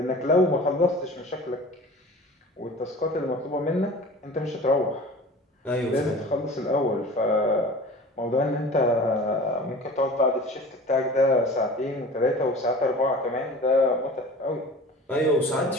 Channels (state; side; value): normal; both; correlation 0.40